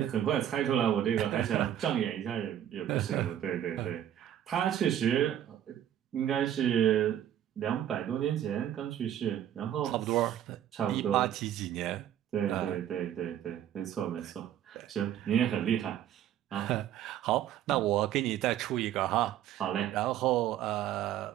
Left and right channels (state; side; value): quieter; left; 10.9 dB